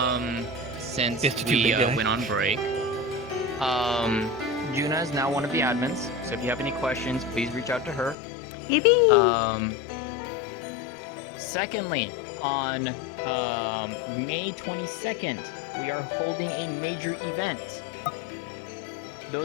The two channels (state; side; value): drops out; right; at 8.2 s